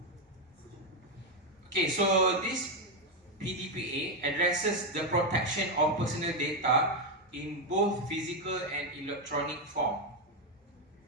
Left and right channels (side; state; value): both; normal; correlation 0.06